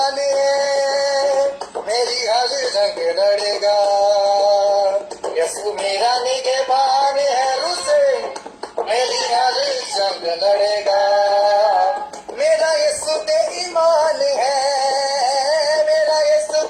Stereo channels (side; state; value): both; identical; correlation 1.00